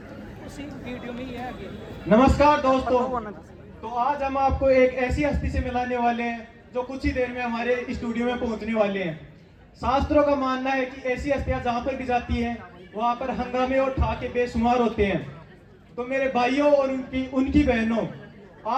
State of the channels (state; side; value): identical; both; correlation 1.00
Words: उसी वीडियो में ही है आगे। नमस्कार दोस्तों, तो आज हम आपको एक ऐसी हस्ती से मिलाने वाले हैं जो कुछ ही देर में हमारे स्टूडियो में पहुंचने वाले हैं। शास्त्रों का मानना है कि ऐसी हस्तियां जहां पर भी जाती हैं वहां पर हंगामे और ठाके बेशुमार होते हैं। तो मेरे भाइयों और उनकी बहनों,